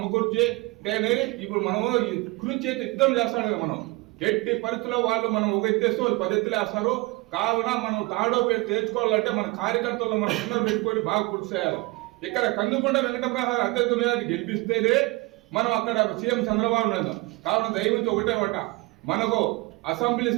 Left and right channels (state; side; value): quieter; left; 23.2 dB